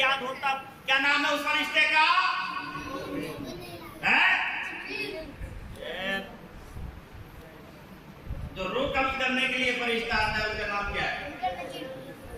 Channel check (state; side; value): identical; both; correlation 1.00